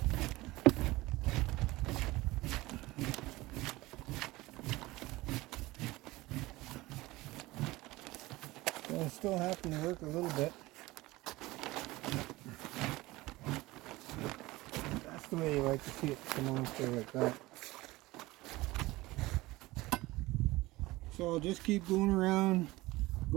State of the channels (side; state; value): left; quieter; 19.8 dB